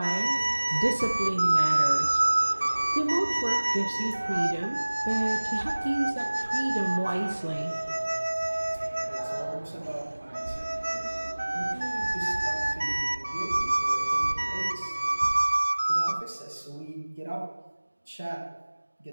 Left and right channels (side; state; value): both; inverted; correlation -1.00